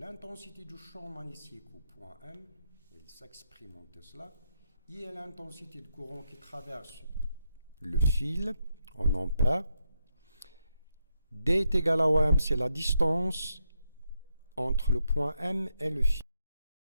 du champ magnétique au point M. Il s'exprime en Tesla. I est l'intensité de courant qui traverse le fil en ampères. D est égal à OM, c'est la distance entre le point M et le fil.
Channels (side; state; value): both; inverted; correlation -0.81